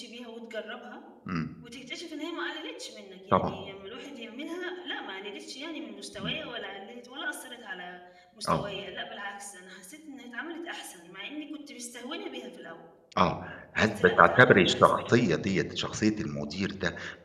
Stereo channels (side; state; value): both; identical; correlation 1.00